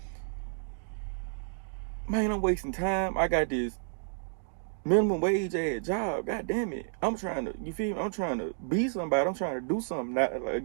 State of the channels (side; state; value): left; silent; digital silence